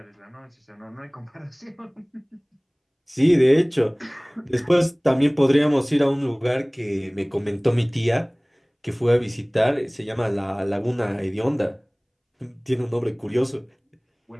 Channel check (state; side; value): identical; both; correlation 1.00